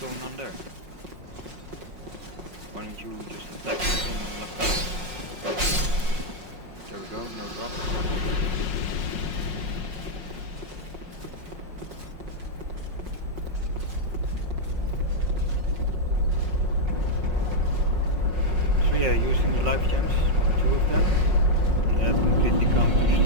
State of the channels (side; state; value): left; late; 5.5 ms